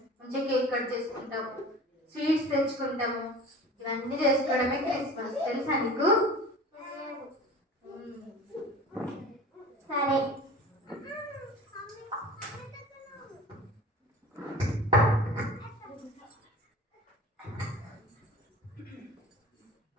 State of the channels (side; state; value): both; normal; correlation 0.39